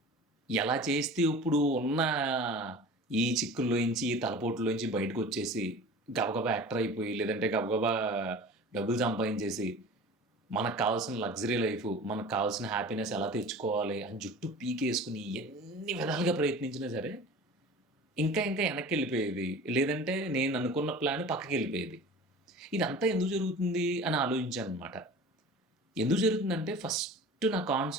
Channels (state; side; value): normal; both; correlation 0.39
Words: ఎలా చేస్తే ఇప్పుడు ఉన్న ఈ చిక్కుల్లోంచి ఈ తలపోట్లోంచి బయటకు వచ్చేసి గబగబా యాక్టర్ అయిపోయి, లేదంటే గబగబా డబ్బులు సంపాదించేసి మనకు కావాల్సిన లగ్జరీ లైఫ్, మనకు కావాల్సిన హ్యాపీనెస్ ఎలా తెచ్చుకోవాలి అని జుట్టు పీకేసుకుని ఎన్ని విధాలుగా ప్రయత్నించినా సరే ఇంకా ఇంకా వెనక్కి వెళ్ళిపోయేది, లేదంటే నేను అనుకున్న ప్లాన్ పక్కకి వెళ్ళిపోయేది. ఇదంతా ఎందుకు జరుగుతుంది అని ఆలోచించాను అనమాట. ఎందుకు జరుగుతుందంటే ఫస్ట్ నా